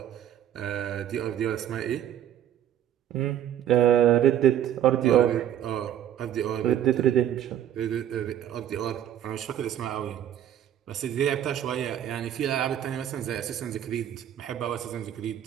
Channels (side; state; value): left; quieter; 11.0 dB